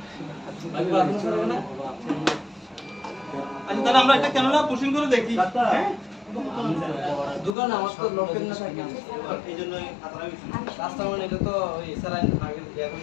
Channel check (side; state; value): right; drops out; at 7.6 s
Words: আচ্ছা তাহলে আমরা একটা ক্যামেরা পুশিং করে দেখি হ্যাঁ দোকান আমার তো লোকের না থাকে এইজন্যই খাতাটা বেশি কাস্টমার এটা তো ওই স্যালাইন আগে দেয়া